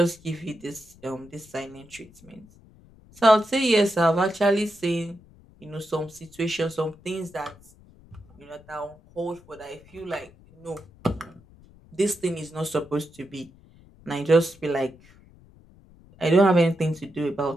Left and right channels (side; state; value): left; noise; rumble, 25 dB below the sound